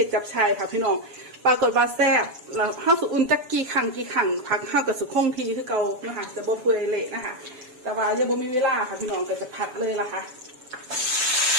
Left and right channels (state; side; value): late; left; 7.1 ms